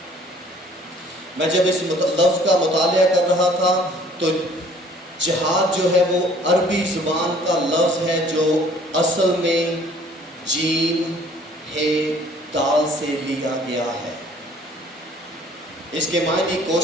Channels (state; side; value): normal; both; correlation 0.55